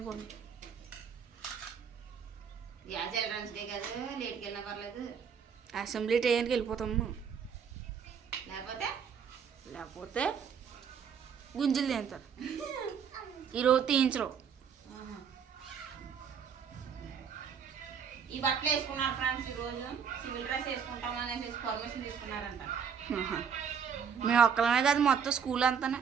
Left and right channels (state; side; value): quieter; left; 7.0 dB